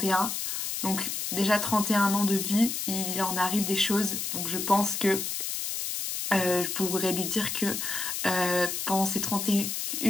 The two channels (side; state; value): left; noise; hiss, 3 dB below the sound